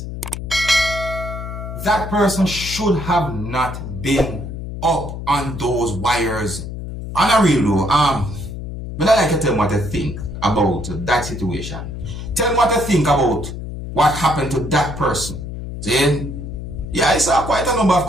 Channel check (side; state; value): left; noise; hum, 8 dB below the sound